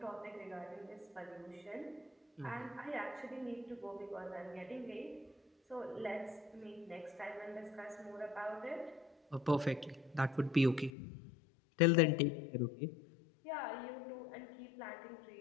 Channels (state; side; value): drops out; right; at 10.9 s